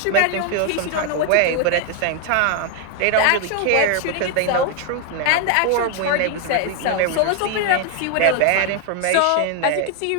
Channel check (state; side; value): different; both; correlation 0.00